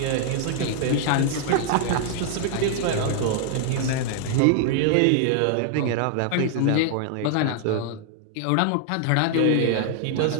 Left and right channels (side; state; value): both; different; correlation 0.00